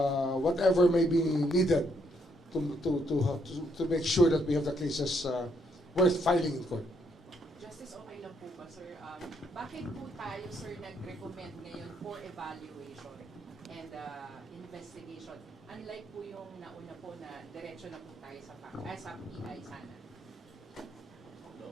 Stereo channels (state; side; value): normal; both; correlation 0.73